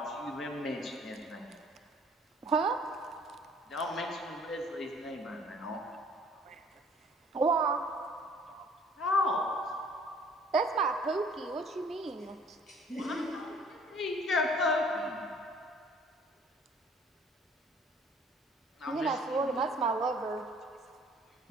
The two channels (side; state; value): both; normal; correlation 0.56